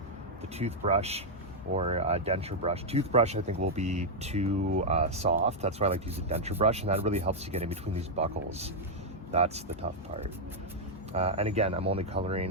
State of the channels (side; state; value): both; normal; correlation -0.03